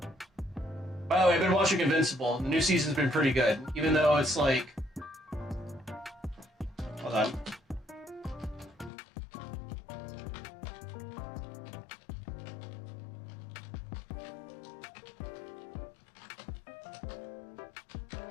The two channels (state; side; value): drops out; right; at 8.9 s